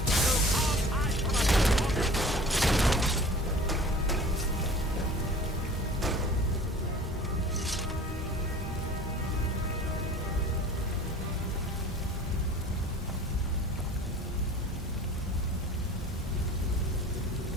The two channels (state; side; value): normal; both; correlation 0.44